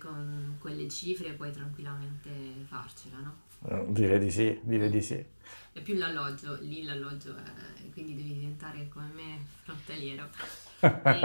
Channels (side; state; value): both; inverted; correlation -1.00